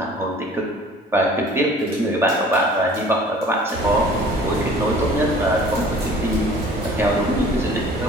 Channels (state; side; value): normal; both; correlation 0.49